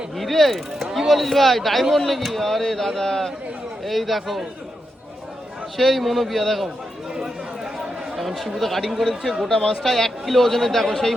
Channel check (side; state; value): both; normal; correlation 0.85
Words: হিরে? কি বলিস ভাই, ডায়মন্ড নাকি? আরে দাদা এই দেখো সেই মনোবিয়া। দেখো এখন শিবুতে কাটিং করে দিচ্ছে গোটা মাছটা 1 কিলো ওজনের। দেখো সেই